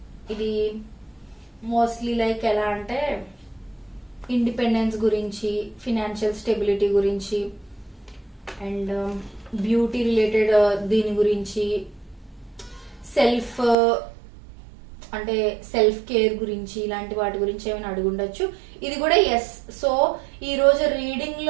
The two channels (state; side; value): drops out; left; at 13.8 s